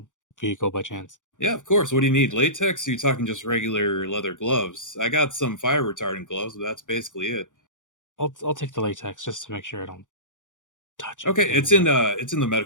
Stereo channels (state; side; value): late; right; 0.87 ms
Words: vehicle by chance? Yeah, of course. What do you need? Latex? Or are you talking just regular leather gloves? I got some fire retardant gloves, but that's basically it. I'll take the latex just to make sure I don't touch it. Okay, it's in the